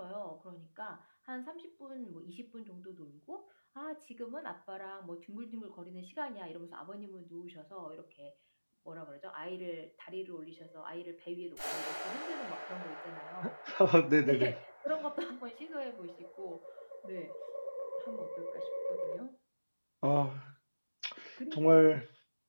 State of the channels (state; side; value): inverted; both; correlation -1.00